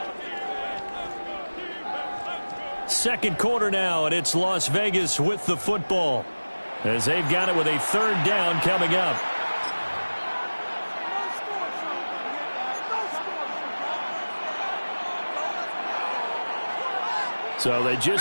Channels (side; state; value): both; inverted; correlation -1.00